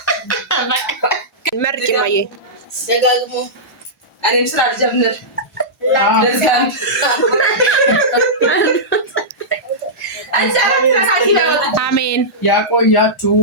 መርቂ ማየ ደጋግሞ እኔም ስራ ልጀምር። አሜን ያቆያችሁ።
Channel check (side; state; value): both; normal; correlation -0.14